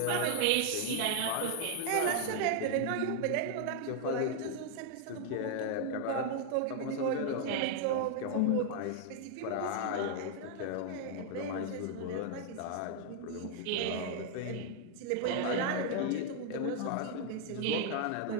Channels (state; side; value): different; both; correlation 0.00